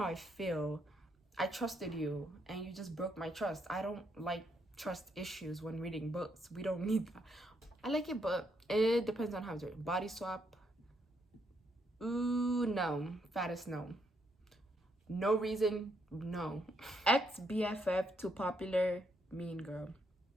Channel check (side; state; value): both; normal; correlation 0.75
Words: I feel. I trusted you and you just broke my trust. I don't like trust issues when reading books. We don't need that. I like it, but it depends on how it's written. Body swap. Ooh, no. Fattest no. No reason, no. Ex BFF too popular, mean girl.